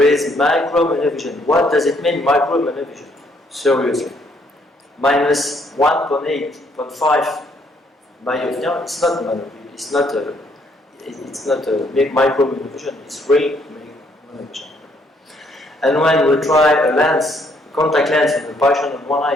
is micro monovision. What does it mean, micro monovision? Seriously. Minus 1.8.5 myopia, it's not monovision, it's not a big micro monovision, it's real monovision. And when we try a lens, a contact lens in a patient on one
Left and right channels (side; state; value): both; normal; correlation 0.68